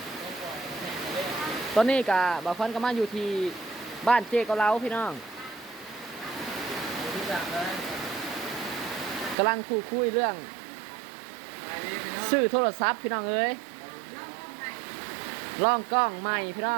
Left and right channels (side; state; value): left; drops out; at 9.3 s